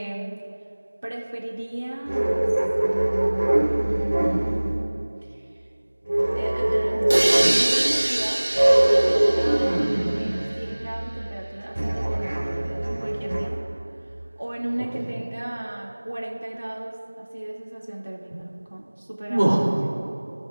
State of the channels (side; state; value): both; inverted; correlation -1.00